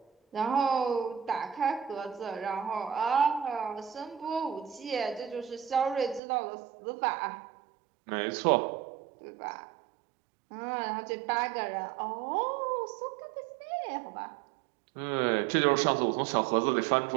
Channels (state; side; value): drops out; left; at 6.2 s